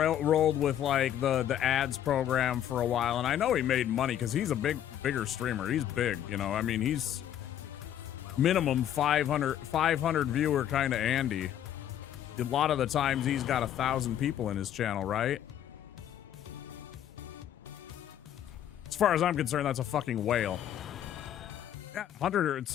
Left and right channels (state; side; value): quieter; right; 10.7 dB